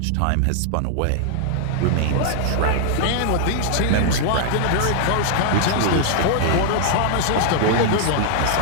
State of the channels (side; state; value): both; different; correlation 0.00